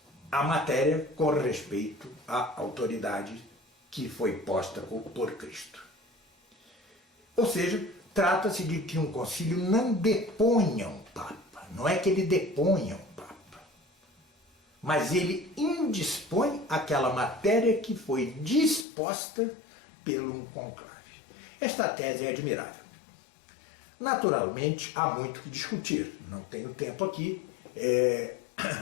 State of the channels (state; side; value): drops out; right; at 18.9 s